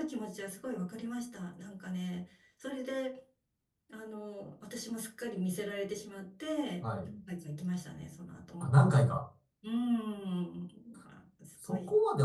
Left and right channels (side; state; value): both; identical; correlation 1.00